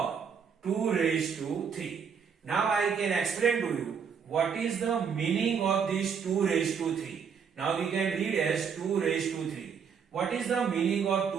2 raised to 3. Now I can explain to you what is the meaning of this 2 raised to 3. Now we can read as 2 raised to 3. What is the meaning of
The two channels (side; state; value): left; quieter; 6.7 dB